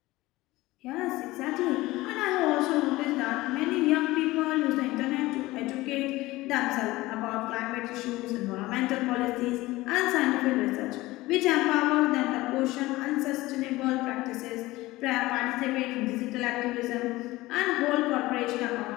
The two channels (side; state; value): right; quieter; 19.0 dB